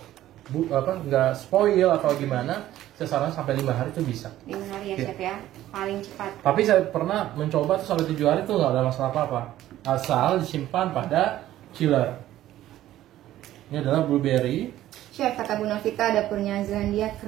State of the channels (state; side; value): quieter; left; 13.7 dB